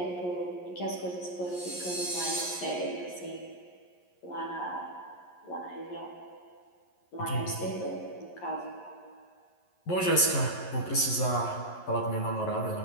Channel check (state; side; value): late; right; 11 ms